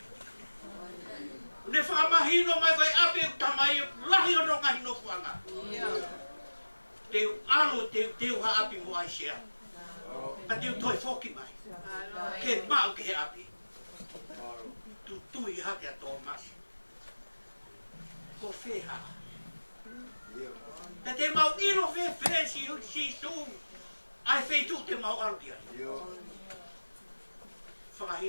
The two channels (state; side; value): inverted; both; correlation -1.00